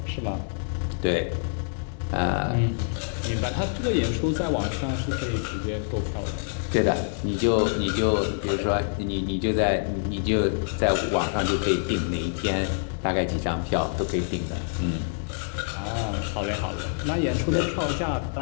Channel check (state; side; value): silent; right; digital silence